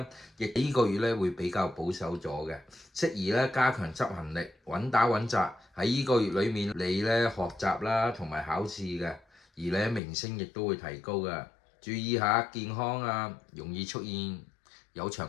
亦呢個月咧會比較保守咗嘅，適宜咧加強執行力，穩打穩紮。喺呢個月裡面，你咧學習啦同埋考試嘅，而咧名聲亦都會提高嘅。注意下健康啊，容易出現有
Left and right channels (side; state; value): right; drops out; at 10.0 s